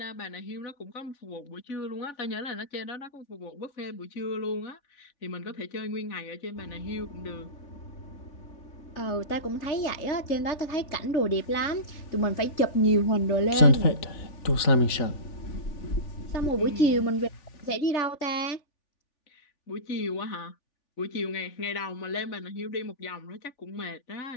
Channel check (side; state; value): right; late; 3.4 ms